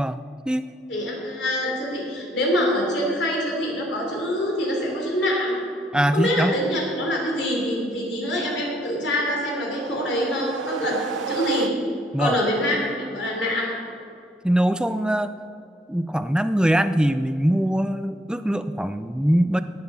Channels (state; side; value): normal; both; correlation 0.68